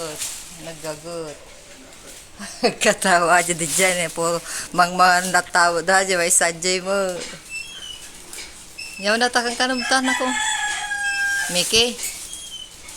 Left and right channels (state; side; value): identical; both; correlation 1.00